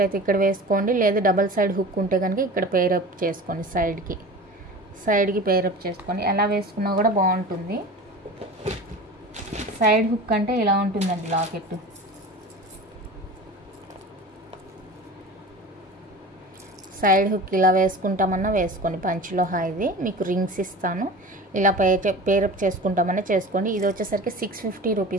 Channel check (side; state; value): both; normal; correlation 0.35